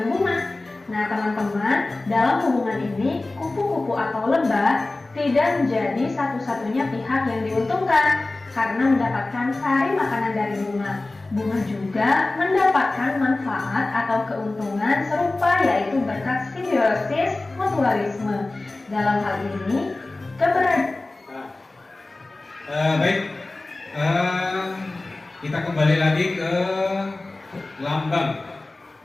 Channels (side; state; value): right; quieter; 3.0 dB